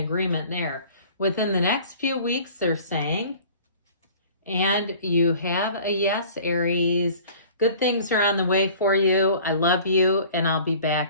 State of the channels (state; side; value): inverted; both; correlation -0.48